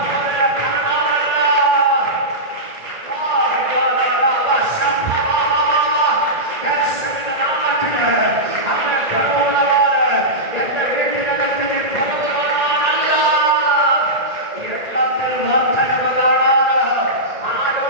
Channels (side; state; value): left; late; 1.8 ms